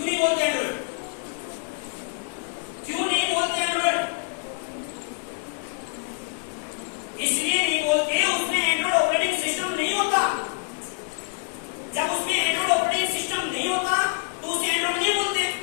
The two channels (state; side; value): silent; right; 61 dB below the other